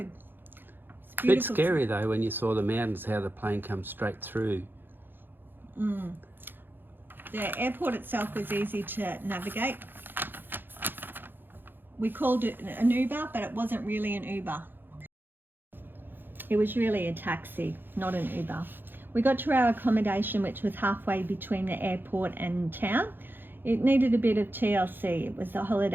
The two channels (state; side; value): late; left; 0.097 ms